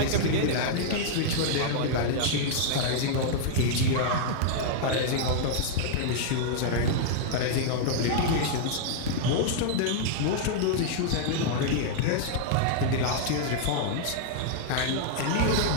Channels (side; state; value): both; different; correlation -0.01